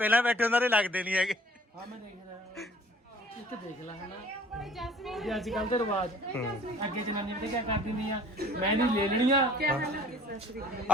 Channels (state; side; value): normal; both; correlation 0.53